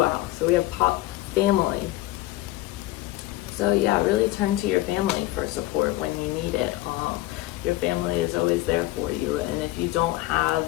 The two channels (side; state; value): right; quieter; 17.0 dB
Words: out. So we have family. So yeah, really turn to your family for support when you need it. Your family is always there for you, and if you don't have